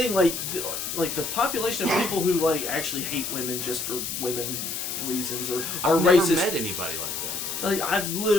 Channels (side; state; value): left; noise; hiss, 4 dB below the sound